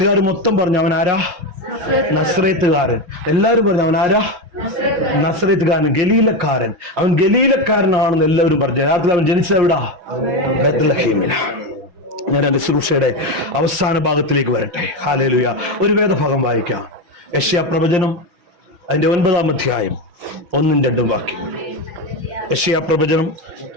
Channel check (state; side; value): late; left; 5.6 ms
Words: മൊത്തം പറഞ്ഞു അവൻ ആരാ? നസ്രേത്തുകാരൻ. എല്ലാവരും പറഞ്ഞു അവൻ ആരാ? നസ്രേത്തുകാരൻ, ഗലീലക്കാരൻ. അവൻ ഗലീലക്കാരനാണെന്ന് എല്ലാവരും പറഞ്ഞു. രാത്രി അവൻ ജനിച്ചത് എവിടാ? ബത്ലഹേമില. ഞാൻ എന്റെ ശുശ്രൂഷയുടെ അവസാന ഭാഗത്തിലേക്ക് വരട്ടെ. ഹല്ലേലൂയ. ഒരു വേദഭാഗം വായിക്കാം. യെശയ്യാ പ്രവചനം അതിന്റെ 9-ാം അധ്യായം 1-2 വാക്യം. യെശയ്യാ പ്രവചനം